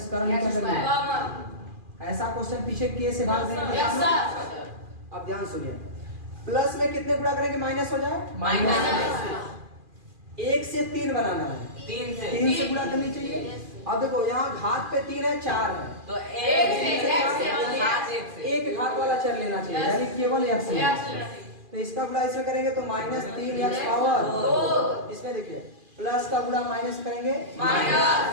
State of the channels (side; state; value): left; late; 2.4 ms